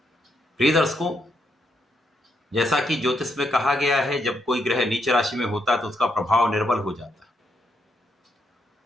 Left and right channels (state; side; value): normal; both; correlation 0.78